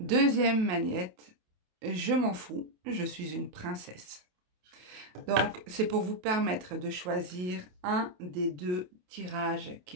magnette, je m'en fous, je suis une princesse. Donc, c'est pour vous permettre de choisir un des deux tirages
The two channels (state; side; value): late; left; 28 ms